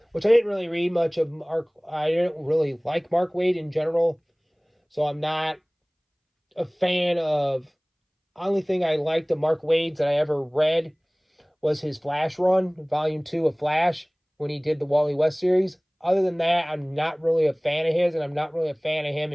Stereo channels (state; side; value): identical; both; correlation 1.00